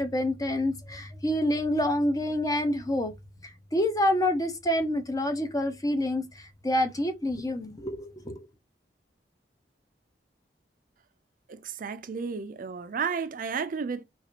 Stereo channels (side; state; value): both; normal; correlation 0.65